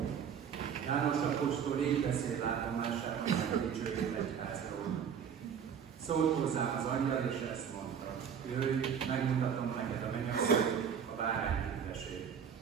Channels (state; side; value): quieter; left; 7.7 dB